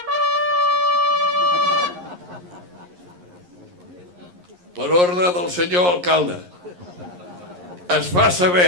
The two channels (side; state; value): left; late; 11 ms